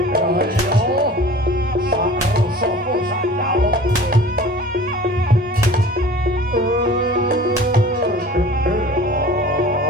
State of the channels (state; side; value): normal; both; correlation 0.43